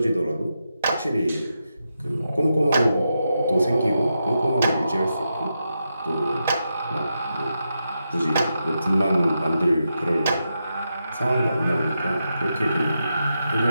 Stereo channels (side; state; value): both; inverted; correlation -0.87